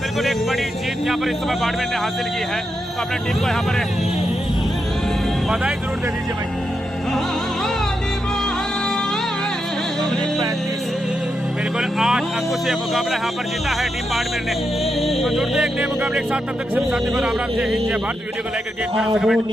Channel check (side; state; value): both; normal; correlation 0.85